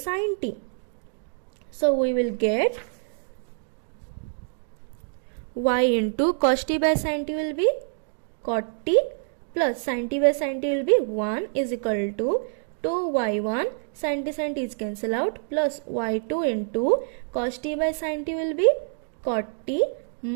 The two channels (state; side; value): silent; left; digital silence